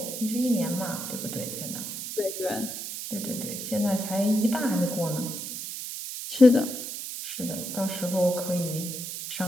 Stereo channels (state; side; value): noise; right; hiss, 6 dB below the sound